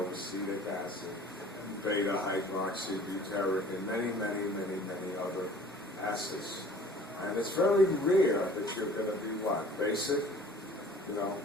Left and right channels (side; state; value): both; normal; correlation 0.49